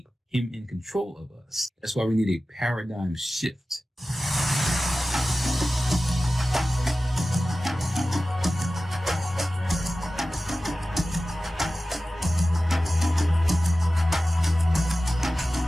him in control of us. That's why we need a paradigm shift.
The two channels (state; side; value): normal; both; correlation 0.95